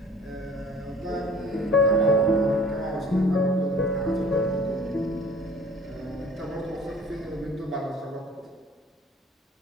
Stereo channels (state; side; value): normal; both; correlation 0.48